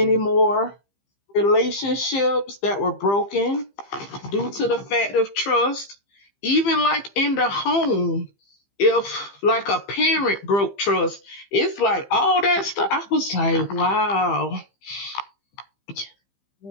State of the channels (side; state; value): right; late; 15 ms